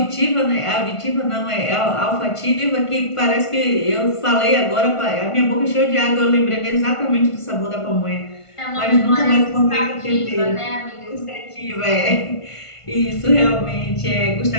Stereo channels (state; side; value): late; right; 1.5 ms